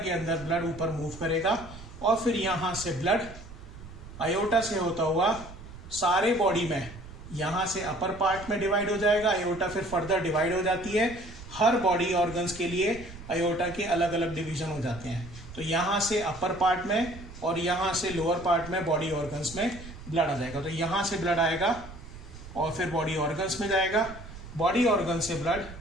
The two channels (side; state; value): right; noise; rumble, 15 dB below the sound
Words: अंदर ब्लड ऊपर मूव करेगा और फिर यहां से ब्लड अयोटा से होता हुआ सारे बॉडी में, यहां से अपर पार्ट में डिवाइड हो जाएगा। अयोटा फिर फर्दर डिवाइड हो जाती है। हर बॉडी ऑर्गन्स के लिए अयोटा के अलग अलग डिवीजन हो जाते हैं। तो यहां से अपर पार्ट में और यहां से लोअर पार्ट में बॉडी ऑर्गन्स में ब्लड आ जाएगा। तो यहां से ब्लड आएगा और फिर बॉडी ऑर्गन्स में जाएगा। बॉडी ऑर्गन से ब्लड